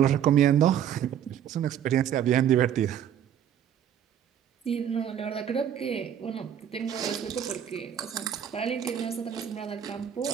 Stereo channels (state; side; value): quieter; left; 9.6 dB